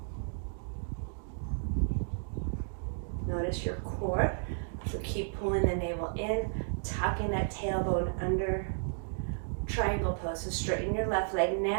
Notice your core, so keep pulling the navel in, tucking that tailbone under. Triangle pose, so straighten your left leg.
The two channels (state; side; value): silent; left; digital silence